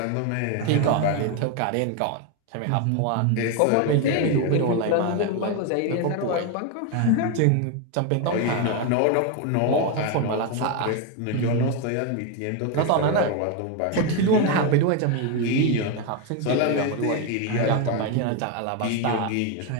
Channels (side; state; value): both; different; correlation 0.02